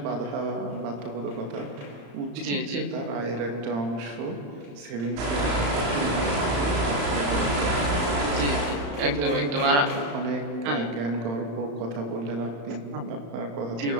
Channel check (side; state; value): left; late; 35 ms